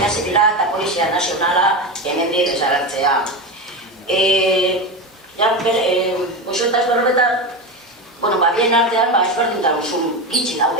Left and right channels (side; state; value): both; normal; correlation 0.19